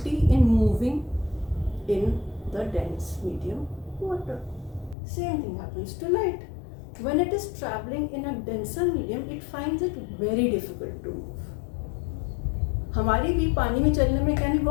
in moving in the dense medium water. Same thing happens to light. When it is traveling in a denser medium, it finds it very difficult to move. हमारी भी पानी में चलने में can we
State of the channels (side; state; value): right; drops out; at 5.0 s